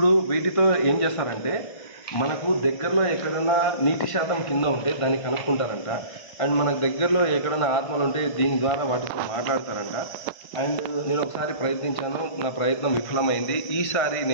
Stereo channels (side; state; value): right; late; 1.5 ms